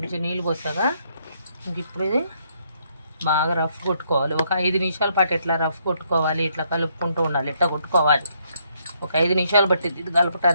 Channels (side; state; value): both; inverted; correlation -0.72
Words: నీళ్ళు పోసాగా ఇంక ఇప్పుడు ఇది బాగా రఫ్ కొట్టుకోవాలి. ఒక 5 నిమిషాల పాటు ఇట్లా రఫ్ కొట్టుకోవాలి. ఇట్లా కలుపుకుంటూ ఉండాలి, ఇట్లా కొట్టుకోవాలి. ఒక 5 నిమిషాలు పట్టింది ఇది